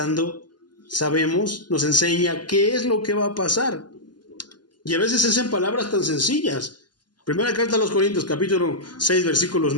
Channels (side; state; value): right; late; 0.71 ms